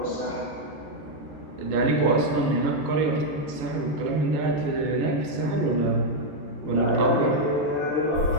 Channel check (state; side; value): late; left; 14 ms